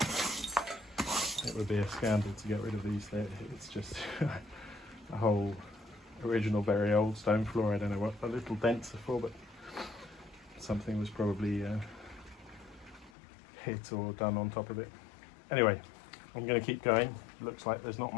it would be a scandal to get rid of these. It's just a whole original very old stone floor. I don't know what the little dents are for, but something was probably hit or done on top of it. Anyway, I'm going to keep going. Looks like there's not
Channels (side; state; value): right; drops out; at 13.1 s